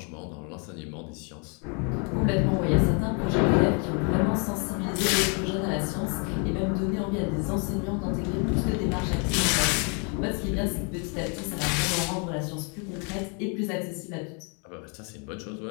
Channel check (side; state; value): right; quieter; 36.7 dB